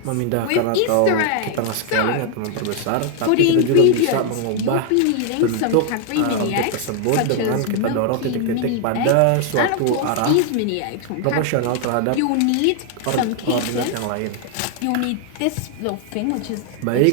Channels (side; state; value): both; different; correlation 0.00